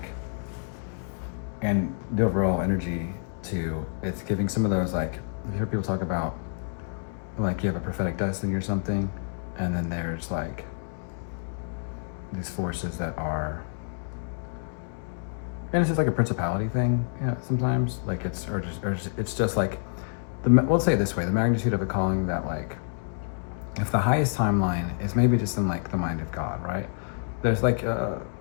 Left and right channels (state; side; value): silent; right; digital silence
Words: and the overall energy too, it's giving some of those like, I've heard people talk about like you have a prophetic destiny or something, and then there's like these forces that are, and it's just like a principality thing, yeah, sometimes like it's it's just like we'll say it this way, the magnitude of a calling that like if the highest timeline is maybe just in like the mind of God, right? There's like